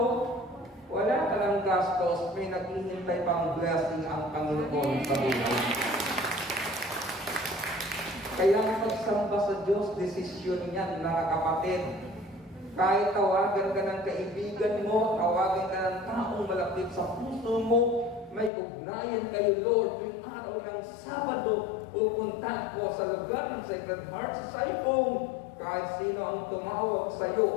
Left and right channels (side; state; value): right; drops out; at 18.5 s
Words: wala ka ng gastos, may naghihintay pang blessing ang Panginoon sa buhay. Kaya pagsamba sa Diyos, desisyon niyan, mga kapatid. Kahit tawagan ka ng kaibigan mo, tawagan ka ng taong malapit sa puso mo, may ugnayan kayo, Lord. Tuwing araw ng Sabado, pupunta ako sa lugar ng Sacred Heart sa Saipong. Kahit sino ang tumawag sa